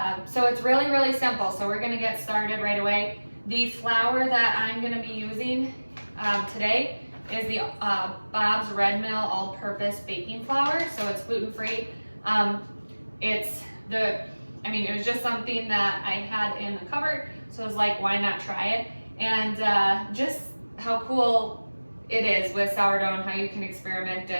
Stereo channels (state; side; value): inverted; both; correlation -1.00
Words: So it's really simple. So we're going to get started right away. The flour that I'm going to be using today is the Bob's Red Mill all-purpose baking flour, so it's gluten-free. It was just something that I had in the cupboard, so I was like, why not try it? And just how cool it is with sourdough and how you can experiment.